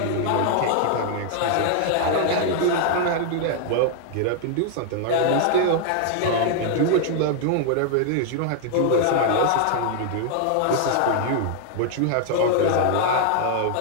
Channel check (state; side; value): different; both; correlation 0.00